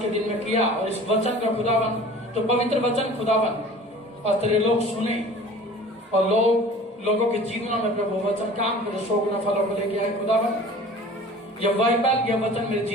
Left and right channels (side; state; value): both; normal; correlation 0.44